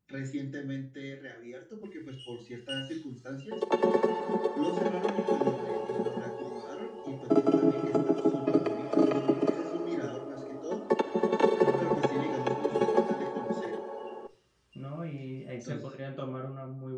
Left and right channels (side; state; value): both; identical; correlation 1.00